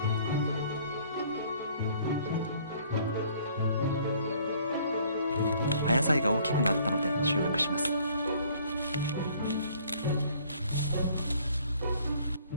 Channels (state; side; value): inverted; both; correlation -0.58